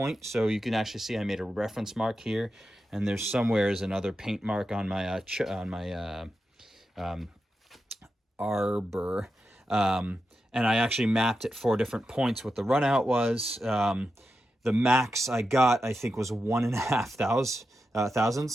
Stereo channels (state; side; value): normal; both; correlation 0.89